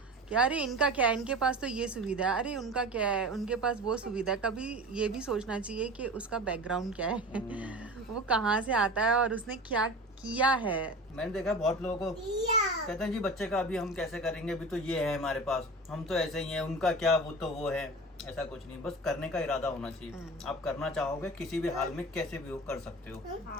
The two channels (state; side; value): normal; both; correlation 0.34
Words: कि अरे इनका क्या है, इनके पास तो ये सुविधा है, अरे उनका क्या है, उनके पास वो सुविधा है। कभी ये भी सोचना चाहिए कि उसका बैकग्राउंड क्या है, वो कहाँ से आता है और उसने क्या किया है। मैंने देखा बहुत लोगों को कहते हैं जी बच्चे का अभी हम कैसे करेंगे, अभी तो ये है हमारे पास, हम तो ऐसे ही हैं, उनका क्या, वो तो वो है। ऐसा कुछ नहीं, बस करने का इरादा होना चाहिए। आप करना चाहोगे किसी भी हाल में कैसे भी हो कर सकते हो।